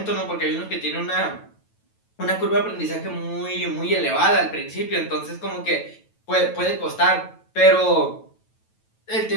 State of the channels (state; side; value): late; right; 9.1 ms